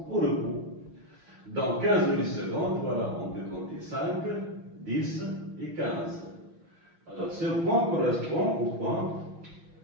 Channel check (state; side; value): late; left; 5.9 ms